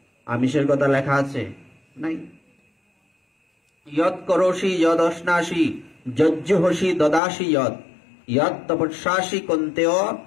আমিষের কথা লেখা আছে? নাই। ইয়ৎ করোষি যদ অশ্নাসি যজ্জুহসি দদাসি যৎ ইয়ৎ তপস্যাসি কন্তেয়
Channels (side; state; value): right; drops out; at 7.2 s